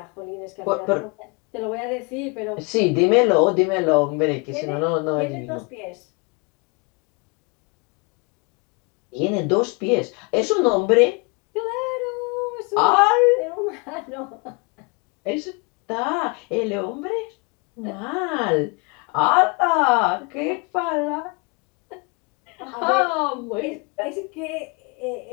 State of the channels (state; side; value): quieter; right; 31.6 dB